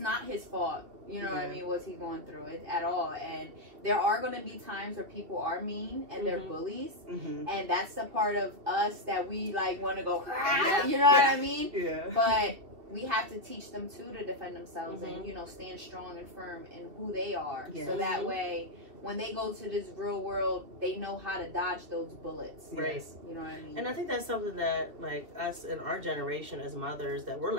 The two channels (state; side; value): late; left; 2.7 ms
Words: his fault. You know what I mean? What he's going through it at all. And there are going to be times where people are mean and they're bullies, and that's the part of us that we like want to go. You know what I mean? Yeah. But we have to teach them too to defend themselves and stand strong and firm in who they are, so that way when they go to this real world, they know how to dodge those bullets. Right. You know what I mean? And I think that's something that, like, us in our generation as mothers, that we're